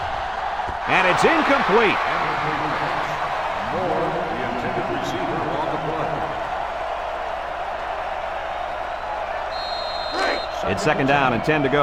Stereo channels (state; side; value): identical; both; correlation 1.00